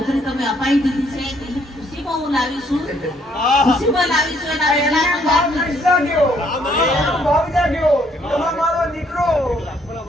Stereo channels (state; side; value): normal; both; correlation 0.67